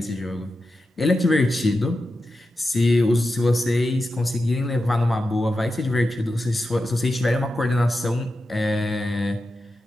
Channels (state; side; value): normal; both; correlation 0.90